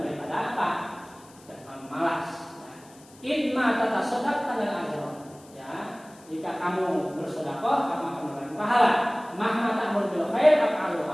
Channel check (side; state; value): left; noise; hiss, 25 dB below the sound